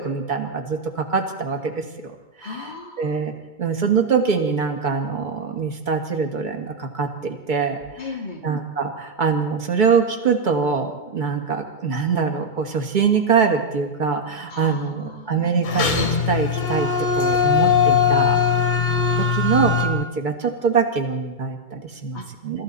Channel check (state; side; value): late; right; 2.2 ms